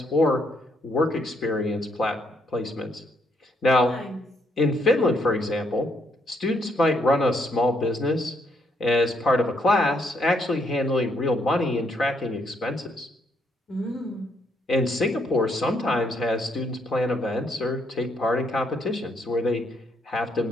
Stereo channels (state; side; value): normal; both; correlation 0.73